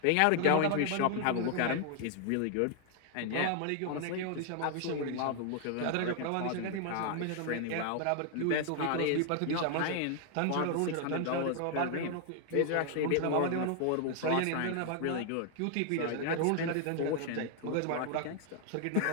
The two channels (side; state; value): both; different; correlation 0.00